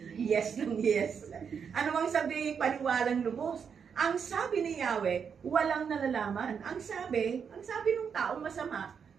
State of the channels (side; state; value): left; quieter; 6.8 dB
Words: Yes lang, yes. Ano mang sabi, paniwalang lubos. Ang sabi ni Yahweh, walang nalalaman. Ang sabi ng taong masama,